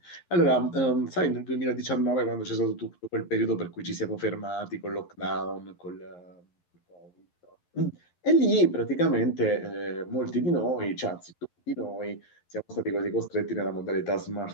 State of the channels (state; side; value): late; right; 11 ms